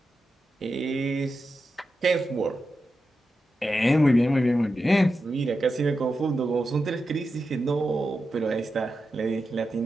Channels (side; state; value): both; normal; correlation 0.89